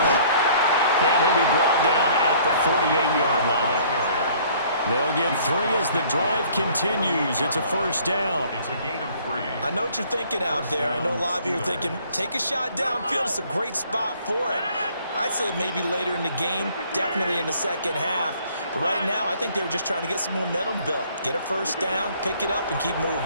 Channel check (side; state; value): both; inverted; correlation -0.57